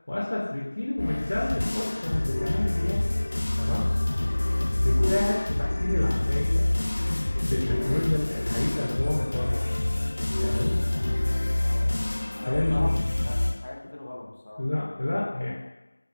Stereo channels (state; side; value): inverted; both; correlation -1.00